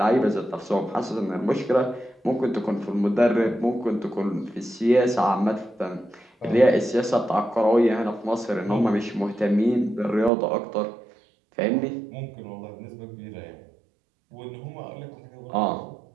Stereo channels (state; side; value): drops out; left; at 10.3 s